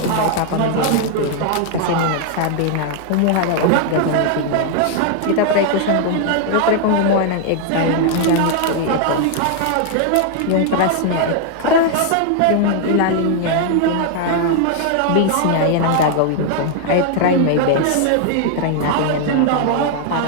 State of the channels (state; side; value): different; both; correlation 0.00